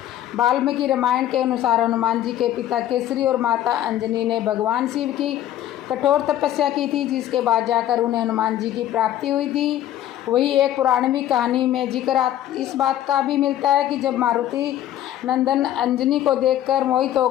वाल्मीकि रामायण के अनुसार हनुमान जी के पिता केसरी और माता अंजनी ने भगवान शिव की कठोर तपस्या की थी, जिसके बाद जाकर उन्हें हनुमान जी की प्राप्ति हुई थी। वही एक पुराणवी कहानी में जिक्र इस बात का भी मिलता है कि जब मारुति नंदन अंजनी को देखकर मोहित हो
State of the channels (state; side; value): quieter; right; 12.3 dB